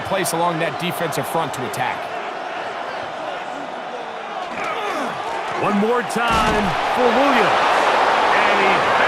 place along that defensive front to attack. One more time for Williams. And he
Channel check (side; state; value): both; identical; correlation 1.00